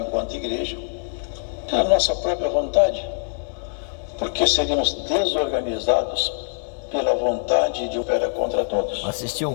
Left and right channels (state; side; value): silent; right; 63 dB below the other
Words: igreja pela nossa própria vontade, porque seríamos desorganizados pela vontade de operar contra todos. Assistir um